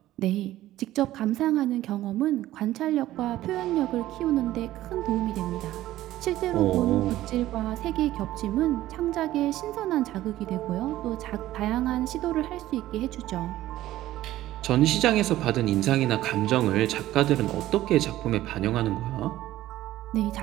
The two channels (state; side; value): quieter; left; 14.8 dB